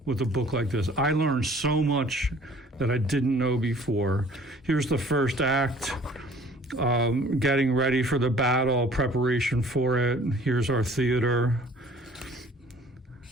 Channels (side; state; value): both; normal; correlation 0.52